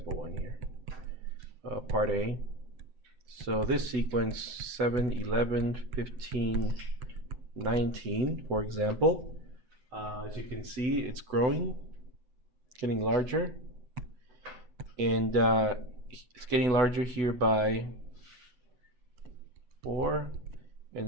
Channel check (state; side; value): late; left; 8.0 ms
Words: 1 here. Part A. So this sequence 7, 11, 15, 19, for example, as you can see, it's growing, getting larger, and it's getting larger here by 4,